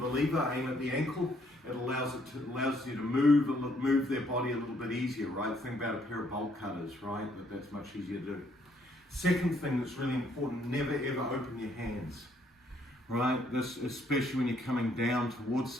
the lever, aim at the ankle. It allows you to move their body a little bit easier, right? Think about a pair of bolt cutters, right? That's much easier to do. Second thing that's really important, never ever open your hands, right? This, especially when you're coming down towards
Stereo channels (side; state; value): both; normal; correlation 0.68